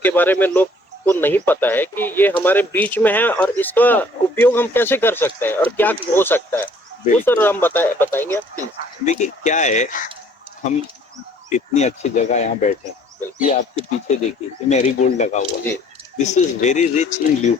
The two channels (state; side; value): normal; both; correlation 0.58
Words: बारे में लोग को नहीं पता है कि ये हमारे बीच में है और इसका उपयोग हम कैसे कर सकते हैं और क्या हो सकता है, वो सर हम बताएंगे आप प्लीज। देखिए क्या है, हम इतनी अच्छी जगह यहाँ बैठे हैं, ये आपके पीछे देखिए, ये मैरीगोल्ड लगा हुआ है। This is very rich in